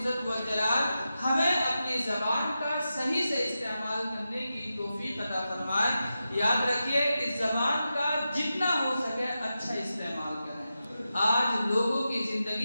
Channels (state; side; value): inverted; both; correlation -0.90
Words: والجلال ہمیں اپنی زبان کا صحیح سے استعمال کرنے کی توفیق عطا فرمائے۔ یاد رکھیے اس زبان کا جتنا ہو سکے اچھا استعمال کریں۔ آج لوگوں کی